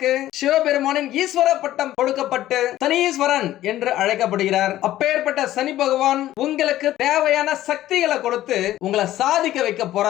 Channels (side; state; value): right; quieter; 14.0 dB